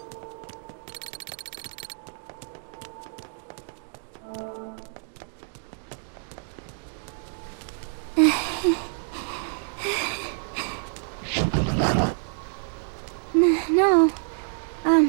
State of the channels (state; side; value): silent; left; digital silence